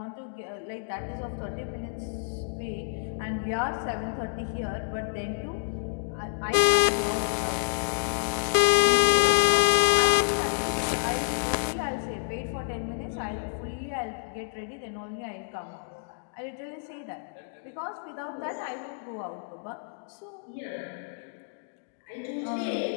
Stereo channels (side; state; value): right; silent; digital silence